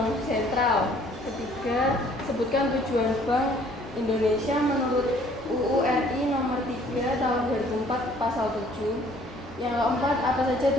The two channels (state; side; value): normal; both; correlation 0.58